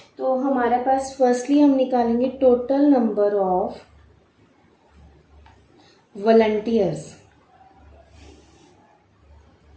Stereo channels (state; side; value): identical; both; correlation 1.00